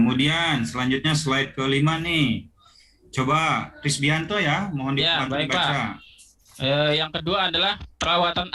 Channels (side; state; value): both; identical; correlation 1.00